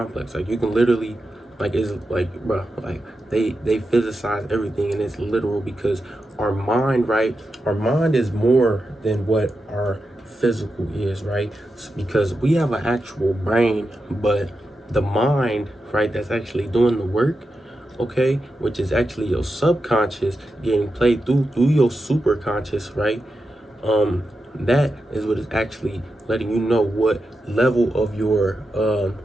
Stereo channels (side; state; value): both; normal; correlation 0.89